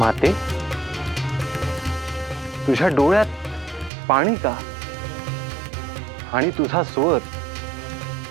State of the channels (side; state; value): left; drops out; at 3.9 s